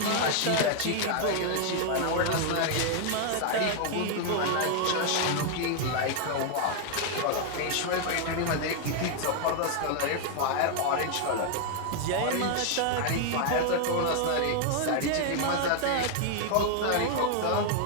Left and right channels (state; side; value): different; both; correlation 0.00